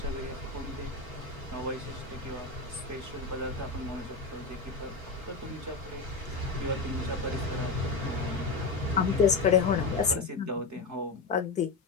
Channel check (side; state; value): right; quieter; 4.1 dB